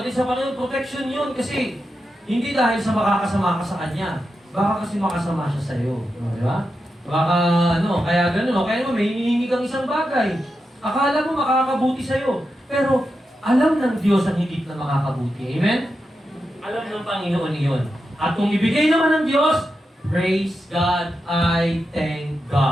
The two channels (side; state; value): both; normal; correlation 0.88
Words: sa Panginoon, protection yon kasi hindi dahil sa makakasama ka sa Kanya. Baka kasi makasama siya sa iyo. No, di ba? Baka, kaya gano'n. Kaya naman, may hinihingi kang isang bagay. Akala mo makakabuti sa iyo. Pero, alam ng Diyos ang higit na makakabuti. Amen? Alam ng Panginoon iyon. At kung ibigay naman ng Diyos, praise God, I thank